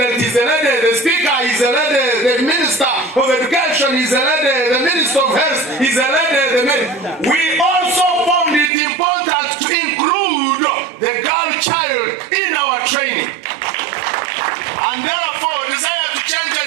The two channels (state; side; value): drops out; left; at 8.7 s